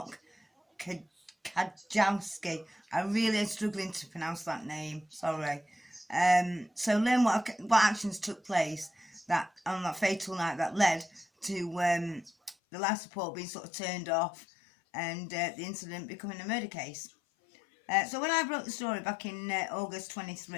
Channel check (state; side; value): drops out; right; at 12.6 s